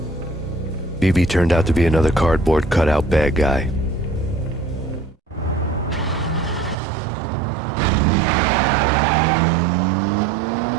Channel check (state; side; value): drops out; left; at 6.8 s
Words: BB turned out to be another cardboard cutout bad guy.